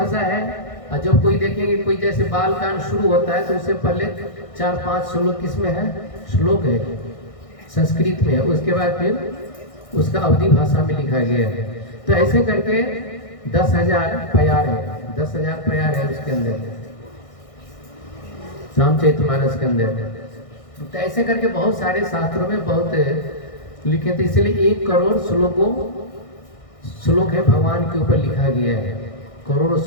है। और जब कोई देखेंगे कोई जैसे बाल कांड शुरू होता है तो उससे पहले 4-5 श्लोक किस में है? श्लोक है, संस्कृत में है। उसके बाद फिर उसका अवधी भाषा में लिखा गया है। तो ऐसे करके 10,000 प्यार है, 10,000 प्यार है उसके अंदर, रामचरितमानस के अंदर। तो ऐसे करके बहुत सारे शास्त्रों में बहुत लिखे थे, इसलिए 1 करोड़ श्लोक है भगवान के ऊपर लिखा गया है। करोड़ों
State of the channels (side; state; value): right; late; 1.6 ms